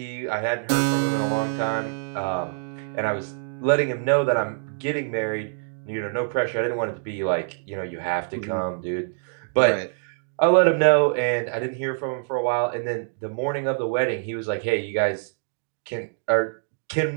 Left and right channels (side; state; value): left; silent; digital silence